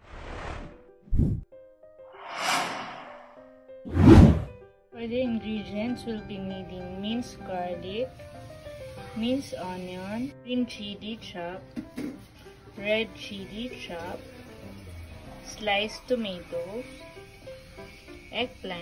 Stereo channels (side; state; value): both; identical; correlation 1.00